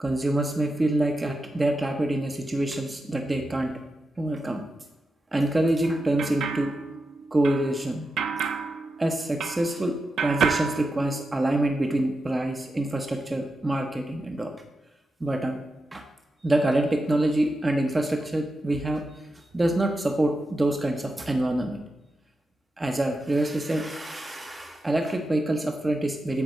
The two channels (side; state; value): both; normal; correlation 0.89